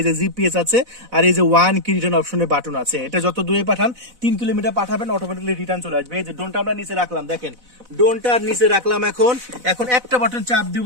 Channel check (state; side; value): late; left; 4.0 ms